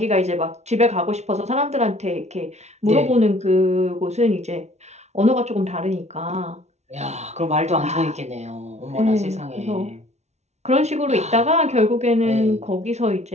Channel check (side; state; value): left; late; 0.32 ms